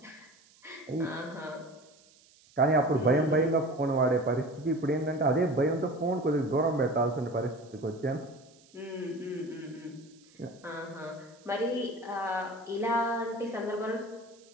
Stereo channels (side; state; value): right; noise; hiss, 28 dB below the sound